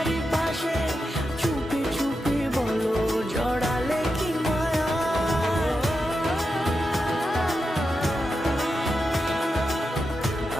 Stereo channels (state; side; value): normal; both; correlation 0.88